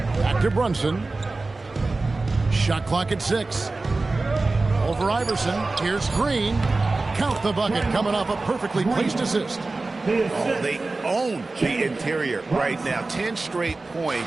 Back to Brunson. Shot clock at 6. Over Iverson. Here's Green. Count the bucket coming off a perfectly placed assist. Oh, they own the interior right now. 10 straight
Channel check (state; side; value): quieter; left; 3.4 dB